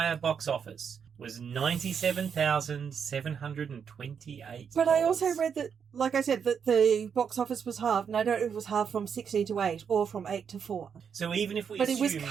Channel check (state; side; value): quieter; left; 7.1 dB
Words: box office was $97,728. But I also read that, like I said, that the box office was halved, and I don't know if it was halved from 16 to 8 or from 8 to 4. So even if we But assume, it was